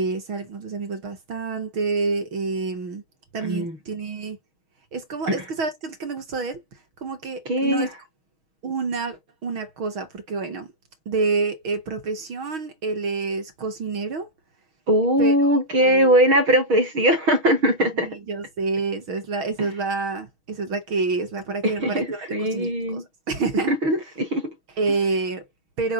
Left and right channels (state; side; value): late; left; 6.3 ms